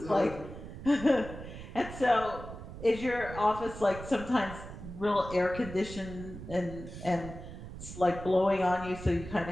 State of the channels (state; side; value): noise; right; rumble, 12 dB below the sound